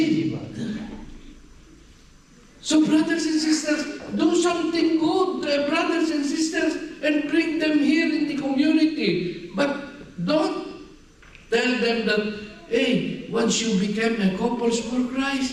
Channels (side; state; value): both; identical; correlation 1.00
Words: So brothers and sisters, do something good, brothers and sisters, and bring them here in the community. But don't tell them that, hey, once you become a couples for Christ,